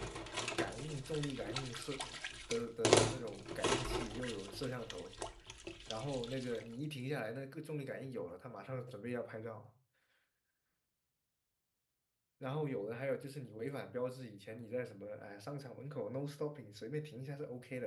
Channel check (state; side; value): identical; both; correlation 1.00